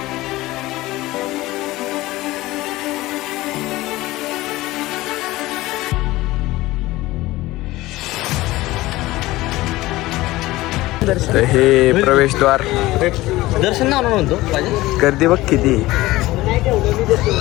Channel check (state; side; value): quieter; right; 18.2 dB